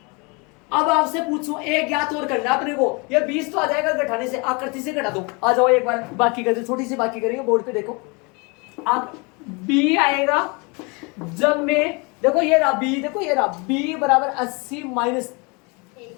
अब आपसे पूछो, एक ज्ञात और करना अपने को। ये 20 तो आ जाएगा घटाने से। आकृति से घटा दो। आ जाओ एक बार बाकी कर दो, छोटी सी बाकी करेंगे। बोर्ड पे देखो, अब बी आएगा जब में, देखो ये रहा बी, देखो ये रहा बी बराबर 80 माइनस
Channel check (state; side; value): quieter; right; 29.8 dB